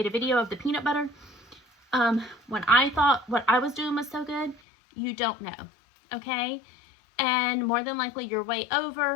a video of the peanut butter. When I thought what I was doing was so good, you don't know, okay? And more than likely you're way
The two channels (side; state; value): right; drops out; at 4.6 s